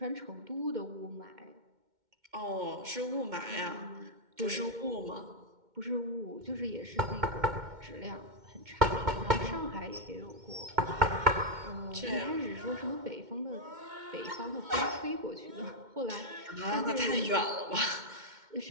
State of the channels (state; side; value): late; left; 2.1 ms